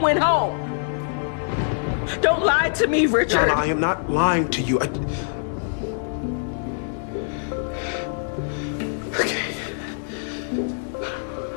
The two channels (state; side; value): silent; right; digital silence